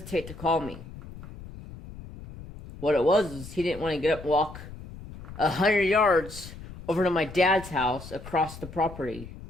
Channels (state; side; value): noise; left; rumble, 14 dB below the sound